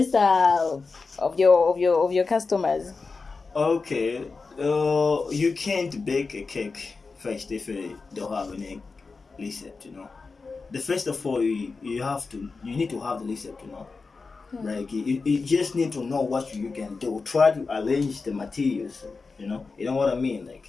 of your customers? Okay. You can't bake a cake first if you don't have any recipe, The first of all, you need to have the recipe, Like you just need to know what you can do. Try to arrange the materials, You know what I mean,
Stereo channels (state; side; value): quieter; right; 4.3 dB